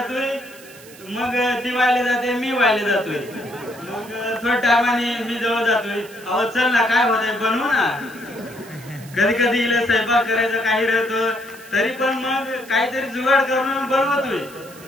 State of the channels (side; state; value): right; noise; hiss, 20 dB below the sound